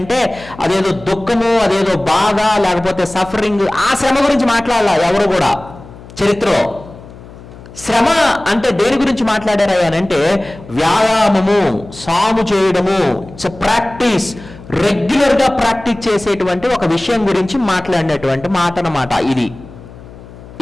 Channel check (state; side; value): noise; left; hum, 18 dB below the sound